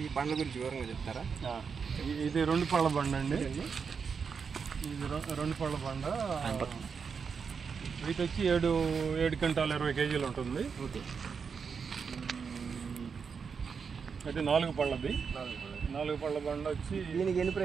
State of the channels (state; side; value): quieter; left; 5.9 dB